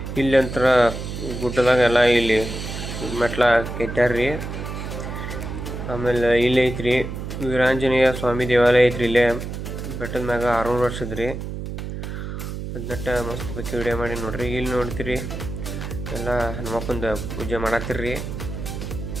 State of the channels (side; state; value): right; noise; hum, 7 dB below the sound